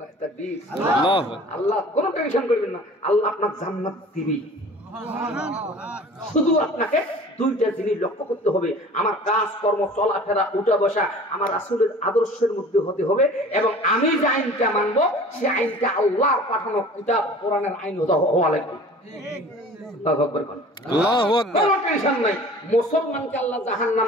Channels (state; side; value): normal; both; correlation 0.44